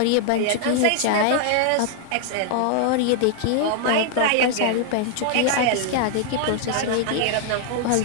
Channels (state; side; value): different; both; correlation 0.00